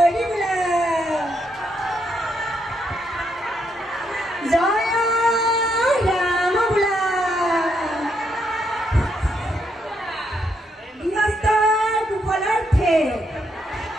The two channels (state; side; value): normal; both; correlation 0.77